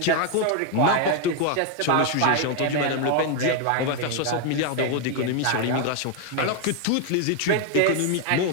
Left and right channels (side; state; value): both; different; correlation 0.01